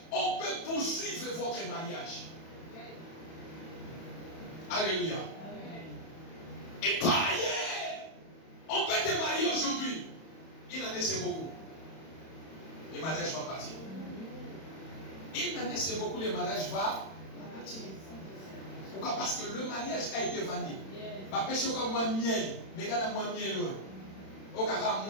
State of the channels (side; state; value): right; late; 31 ms